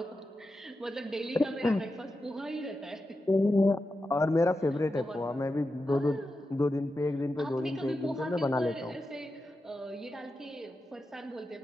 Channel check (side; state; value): both; normal; correlation 0.90